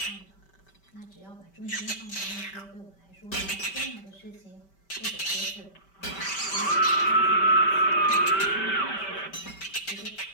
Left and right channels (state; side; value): late; right; 5.1 ms